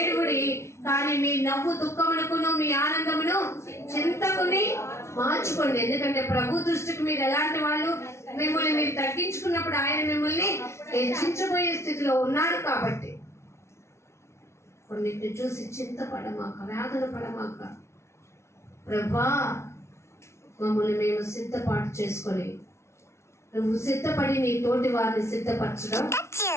కానీ మీ నవ్వు దుఃఖమునకును మీ ఆనందమును చింతకుని మార్చుకోండి. ఎందుకంటే ప్రభు దృష్టికి మీరు ఎలాంటి వాళ్ళు, మిమ్మల్ని మీరు తగ్గించుకున్నప్పుడు ఆయన మిమ్మల్ని హెచ్చించబోయే స్థితిలో ఉన్నాడు. కాబట్టి కొన్నిటిని చూసి చింతపడమాక, వేదన పడమాక. ప్రభా, మమ్మల్ని మేము సిద్ధపాటు చేసుకొని, నువ్వు సిద్ధపడి నీ తోటి వారిని సిద్ధపరచడం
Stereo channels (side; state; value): right; late; 0.13 ms